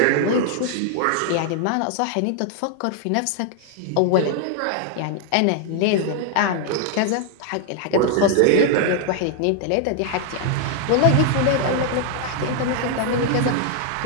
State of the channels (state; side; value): different; both; correlation 0.00